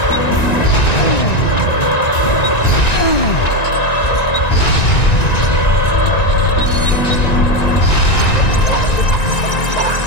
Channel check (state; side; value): late; right; 1.9 ms